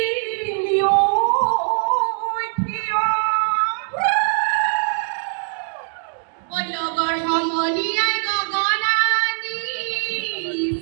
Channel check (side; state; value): left; silent; digital silence